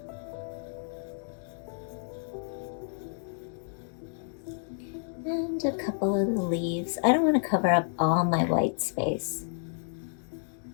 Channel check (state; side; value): silent; right; digital silence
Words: And a couple of the leaves. I don't want to cover up all my white space.